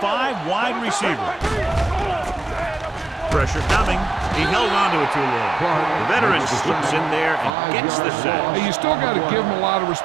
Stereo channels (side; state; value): left; drops out; at 7.5 s